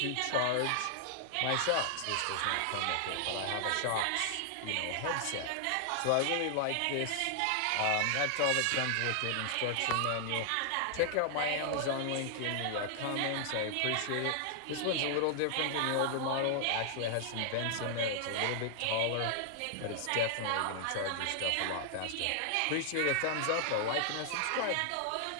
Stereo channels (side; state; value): both; different; correlation 0.00